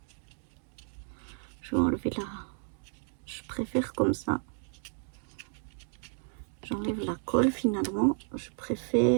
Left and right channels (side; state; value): left; silent; 56 dB below the other